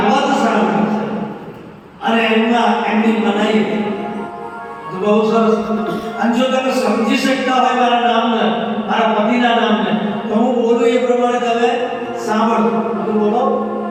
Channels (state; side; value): identical; both; correlation 1.00